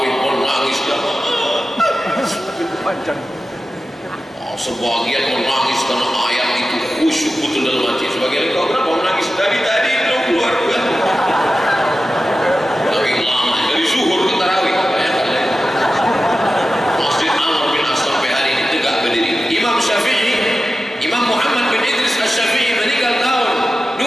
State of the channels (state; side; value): normal; both; correlation 0.94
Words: menangis dia. Sebagian menangis karena ayat itu khusyuk betul dalam hati. Sebagian kau kenapa menangis? Dari tadi belum keluar. Tapi lama dari zuhur ke tarawih. Masjid Amr bin As sampai hari ini tegak berdiri. Imam Syafi'i, Imam Muhammad bin Idris Asy-Syafi'i meninggal tahun